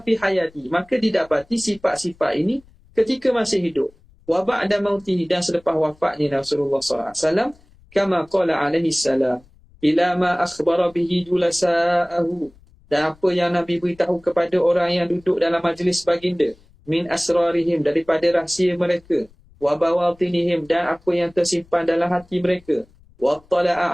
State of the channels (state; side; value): noise; left; rumble, 29 dB below the sound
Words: fi hayati, maka didapati sifat-sifat ini ketika masih hidup. Wa ba'da mautihi, dan selepas wafatnya Rasulullah SAW, kama qala alaihi salam, ila ma akhbara bihi julasa'ahu, dan apa yang Nabi beritahu kepada orang yang duduk dalam majlis baginda, min asrarihim, daripada rahsia mereka, wa bawatinihim, dan apa yang tersimpan dalam hati mereka, wa